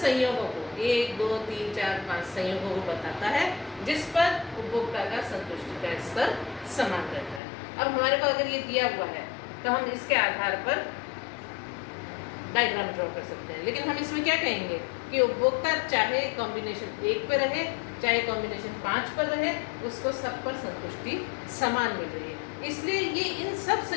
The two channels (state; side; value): drops out; right; at 7.4 s